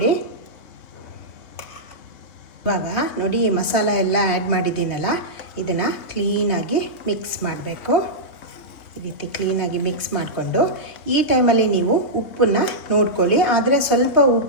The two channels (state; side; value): late; right; 3.4 ms